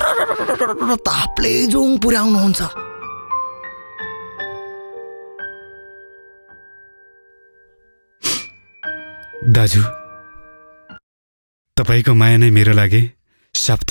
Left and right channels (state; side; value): inverted; both; correlation -1.00